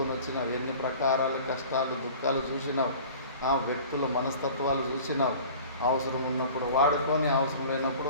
వచ్చినావు. ఎన్ని ప్రకారాల కష్టాలు దుఃఖాలు చూసినావు. వ్యక్తుల మనస్తత్వాలు చూసినావు. అవసరం ఉన్నప్పుడు వాడుకొని, అవసరం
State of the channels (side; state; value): both; inverted; correlation -0.43